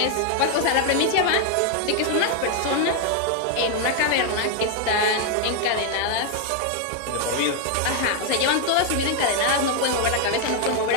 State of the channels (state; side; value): different; both; correlation 0.00